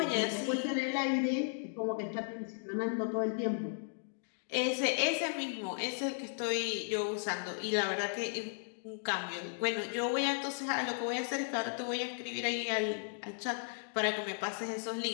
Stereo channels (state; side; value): silent; right; digital silence